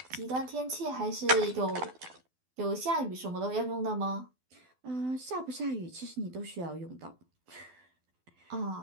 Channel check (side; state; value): left; late; 12 ms